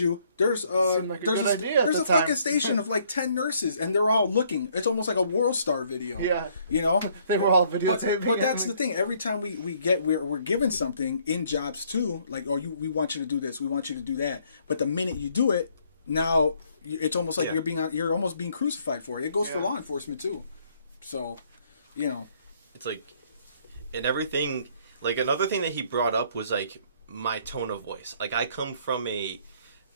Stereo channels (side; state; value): both; inverted; correlation -0.65